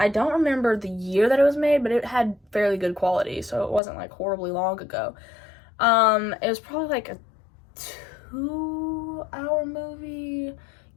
don't remember the year that it was made, but it had fairly good quality, so it wasn't, like, horribly long ago. It was probably, like, a 2-hour movie,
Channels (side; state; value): right; drops out; at 3.8 s